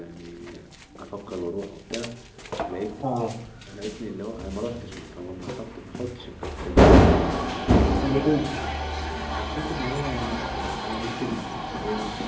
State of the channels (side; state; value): both; identical; correlation 1.00